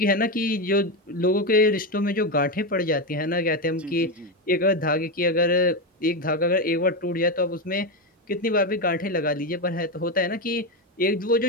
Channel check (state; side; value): normal; both; correlation 0.12